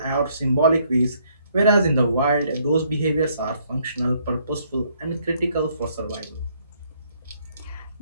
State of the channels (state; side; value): inverted; both; correlation -0.68